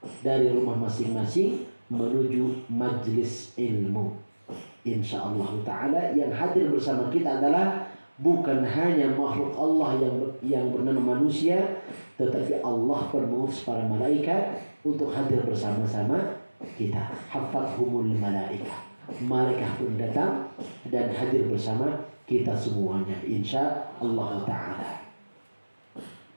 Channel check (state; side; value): inverted; both; correlation -1.00